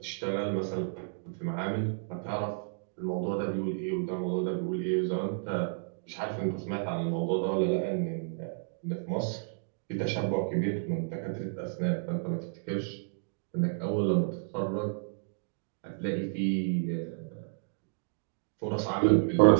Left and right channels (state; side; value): silent; left; digital silence